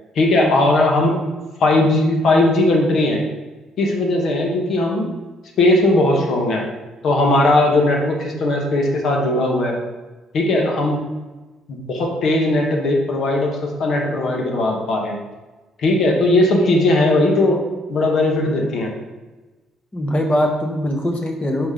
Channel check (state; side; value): normal; both; correlation 0.66